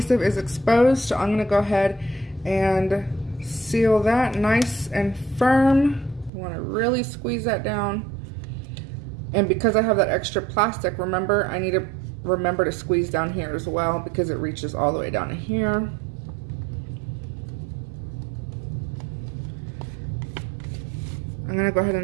is exposed, so I'm going to go ahead and seal that nice and firm. You want to really squeeze that down. And because I have that extra plastic, remember, I need to remember to squeeze down here as well because it reaches all the way down to here. I'm gonna go ahead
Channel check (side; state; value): left; drops out; at 6.3 s